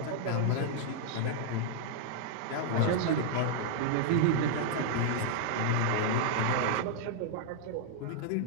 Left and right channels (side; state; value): both; different; correlation -0.01